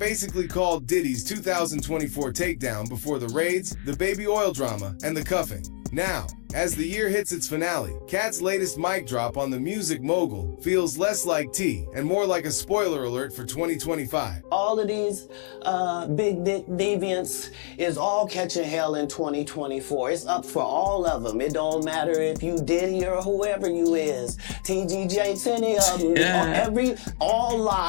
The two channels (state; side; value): silent; right; 61 dB below the other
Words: called Diddy's 2024 takedown before the raids, the baby oil drama, and the cuffing. Now, as the year hits its finale, Cat's latest mic drop on the music mogul feels less like tea and more like a spoiler alert for 2025. All of these big dick deviants is all catching hell in 2024. It's up for all of them. It don't matter if you Diddy or whoever you is. TGJ, any of them. All